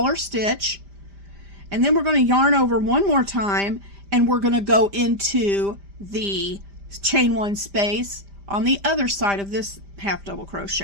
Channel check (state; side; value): late; left; 5.0 ms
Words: stitch. And then we're going to yarn over one more time, and we're going to go into the chain 1 space on the other side of this half double